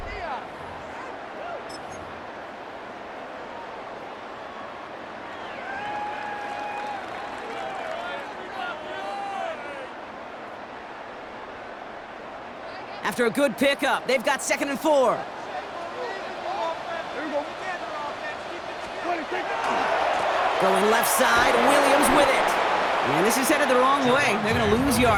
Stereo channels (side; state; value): both; identical; correlation 1.00